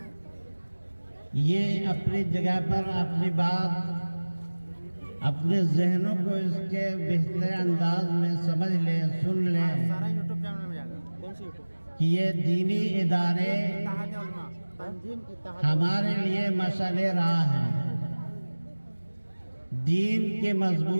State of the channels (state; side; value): inverted; both; correlation -1.00